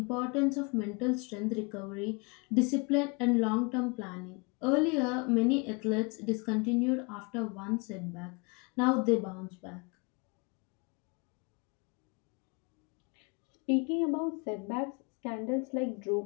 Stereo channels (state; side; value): quieter; right; 30.1 dB